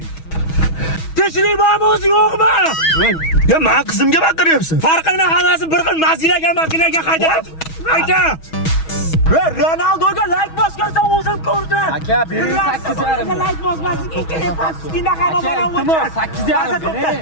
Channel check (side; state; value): right; late; 6.2 ms